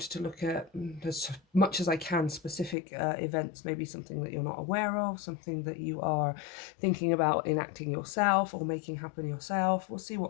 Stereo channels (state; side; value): drops out; right; at 2.8 s